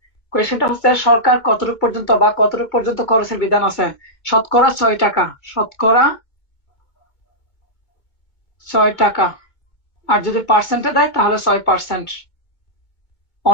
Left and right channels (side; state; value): right; late; 2.2 ms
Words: কোয়েশ্চেনটা হচ্ছে সরকার কতটুকু পর্যন্ত বা কতটুকু পর্যন্ত খরচের বিধান আছে? শতকরা 6 টাকা, শতকরা 6 টাকা। আর যদি পার্সেন্টে দেয় তাহলে 6%।